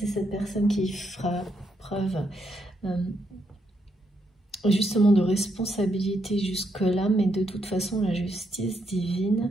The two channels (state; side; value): normal; both; correlation 0.78